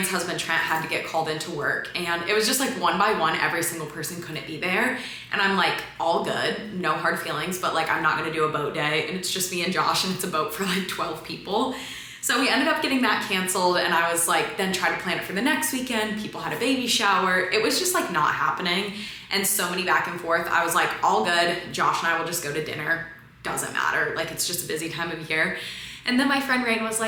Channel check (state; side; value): identical; both; correlation 1.00